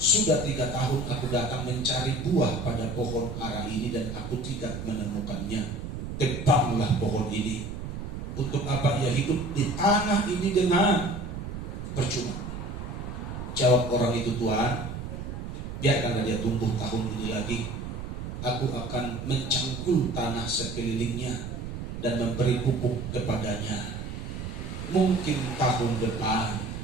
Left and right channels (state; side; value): noise; right; rumble, 7 dB below the sound